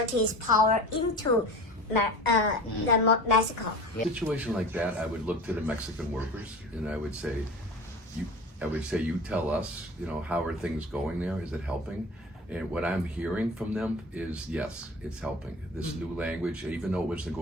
power into the Mexico. In a situation like that, I would look to the Mexican workers and I would say, you tell us, how are things going there? Is it helping? And what I'm hearing from them is, yes, it's helping. This new language, even though it was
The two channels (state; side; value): normal; both; correlation 0.36